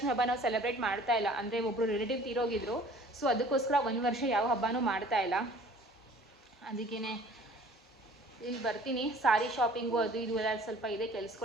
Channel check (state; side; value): normal; both; correlation 0.50